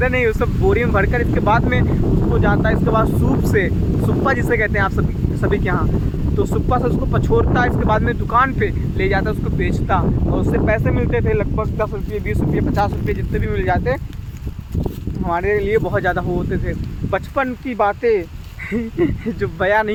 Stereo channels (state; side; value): identical; both; correlation 1.00